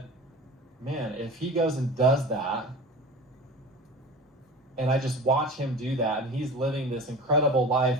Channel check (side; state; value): both; normal; correlation 0.35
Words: man, if he goes and does that, and I just watch him do that, and he's living this incredible life,